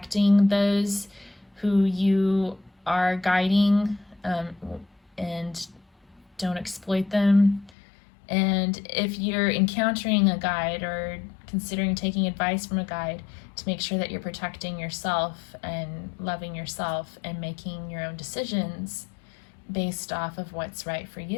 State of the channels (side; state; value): right; drops out; at 7.7 s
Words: those who you are guiding, and don't exploit them. And if you're encountering a guide or considering taking advice from a guide, to make sure that you're protecting yourself and loving yourself and making your own decisions based off of what's right for